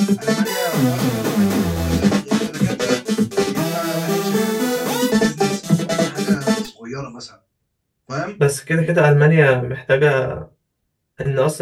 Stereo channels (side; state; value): both; identical; correlation 1.00